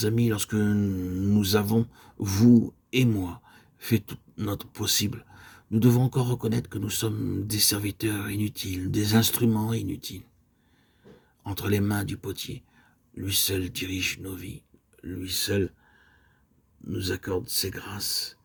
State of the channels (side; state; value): both; identical; correlation 1.00